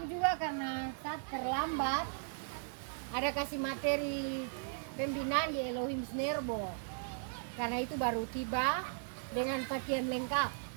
juga karena saat terlambat ada kasih materi pembinaan di Elohim Snerbo. Karena itu baru tiba dengan pakaian lengkap.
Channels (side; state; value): left; silent; 53 dB below the other